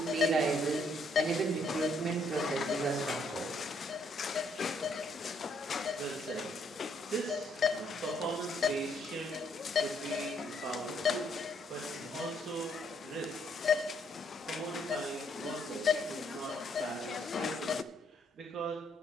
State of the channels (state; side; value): normal; both; correlation 0.70